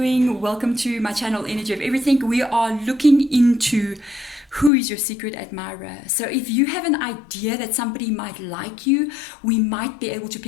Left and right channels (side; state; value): right; drops out; at 4.7 s